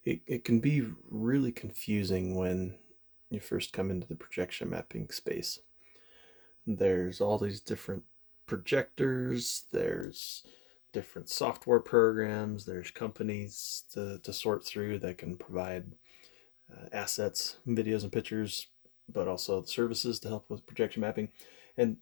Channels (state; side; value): drops out; right; at 10.1 s